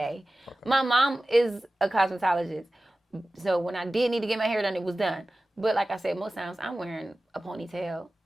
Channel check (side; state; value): both; normal; correlation 0.96